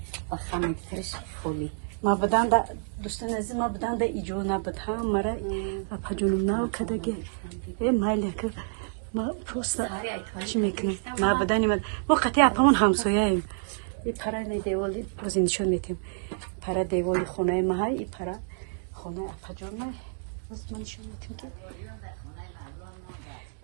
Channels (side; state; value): left; silent; digital silence